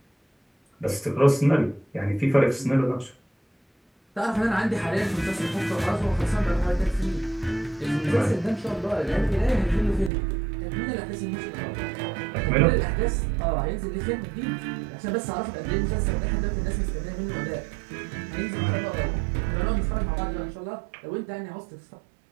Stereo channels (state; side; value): drops out; left; at 10.1 s